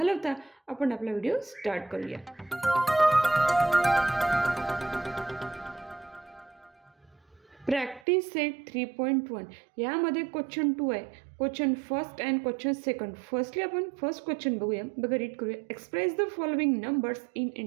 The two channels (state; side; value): drops out; left; at 8.0 s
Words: आपण आपला व्हिडिओ स्टार्ट करूया. प्रॅक्टिस सेट 3.1 यामध्ये क्वेश्चन 2 आहे, question first and question second. Firstly आपण फर्स्ट क्वेश्चन बघूया, रीड करूया. Express the following numbers in